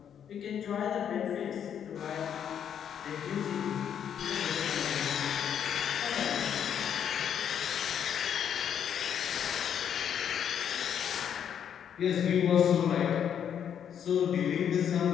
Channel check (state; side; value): quieter; right; 8.7 dB